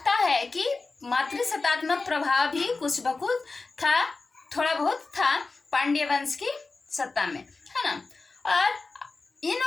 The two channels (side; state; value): right; quieter; 3.8 dB